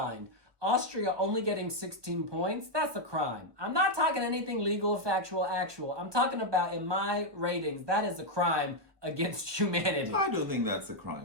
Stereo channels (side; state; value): left; late; 1.3 ms